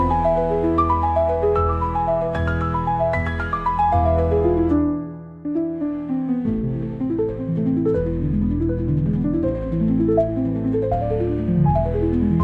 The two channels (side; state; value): both; identical; correlation 1.00